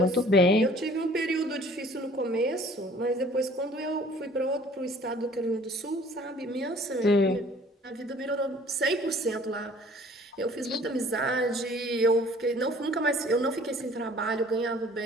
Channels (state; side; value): normal; both; correlation 0.53